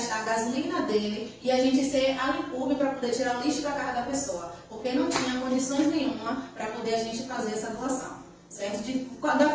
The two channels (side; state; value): both; identical; correlation 1.00